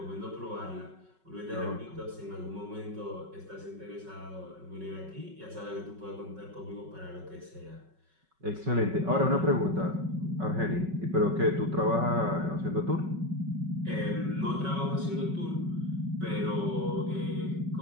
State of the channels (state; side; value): late; left; 5.3 ms